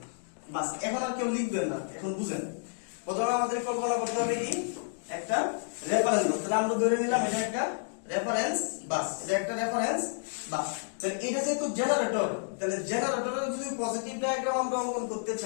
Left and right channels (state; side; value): silent; right; digital silence